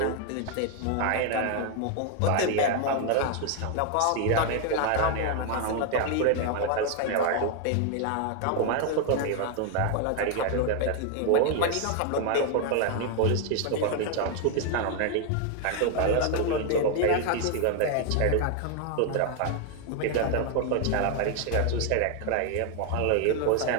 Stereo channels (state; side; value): different; both; correlation 0.01